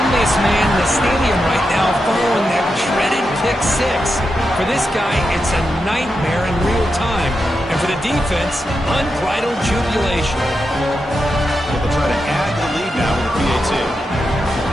man in the stadium right now following that dreaded pick 6. For this guy, it's a nightmare in real time. And for the defense, unbridled jubilation. They'll try to add to the lead now with the PAT.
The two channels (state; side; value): normal; both; correlation 0.87